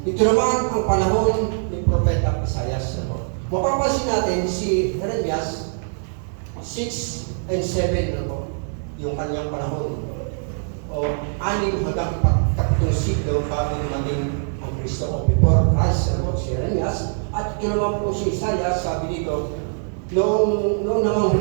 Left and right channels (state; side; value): silent; left; 63 dB below the other